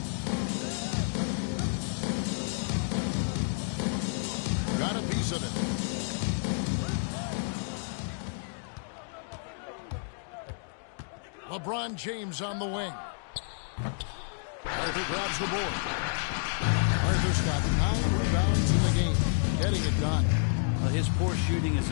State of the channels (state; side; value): silent; right; digital silence